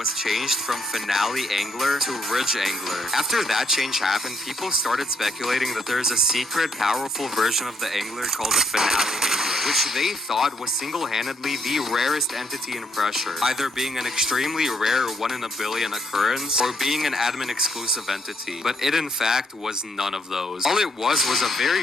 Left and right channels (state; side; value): normal; both; correlation 0.72